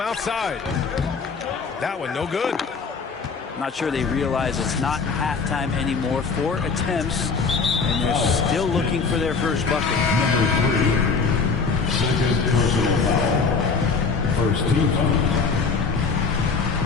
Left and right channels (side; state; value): right; quieter; 4.9 dB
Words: outside. That one no good. Not sure they realize it's not halftime anymore. 4 attempts, and they're still looking for their first bucket. Number 3, second personal foul. First team foul.